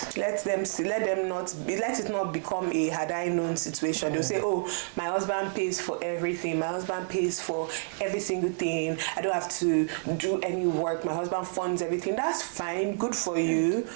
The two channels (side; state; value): left; silent; digital silence